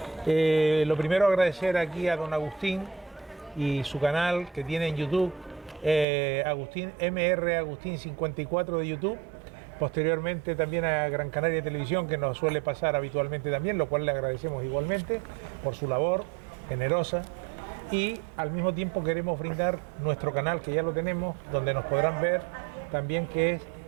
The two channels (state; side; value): drops out; left; at 6.1 s